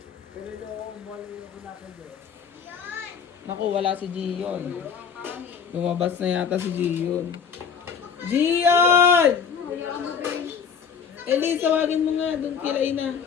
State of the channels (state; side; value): quieter; right; 6.7 dB